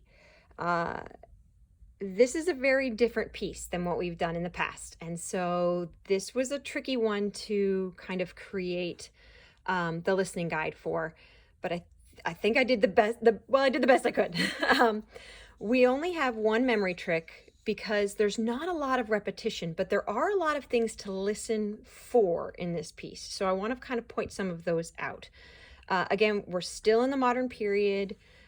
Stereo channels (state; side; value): identical; both; correlation 1.00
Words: Uh, this is a very different piece than what we've done in the past. And so this was a tricky one to kind of create the listening guide for, but I think I did the best, I did the best I could. We only have one memory trick because there's not a lot of repetition, but there are a lot of things to listen for in this piece. So I want to kind of point some of those out. Again, we're still in the modern period.